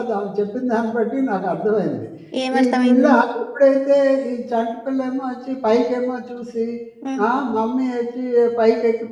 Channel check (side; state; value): both; identical; correlation 1.00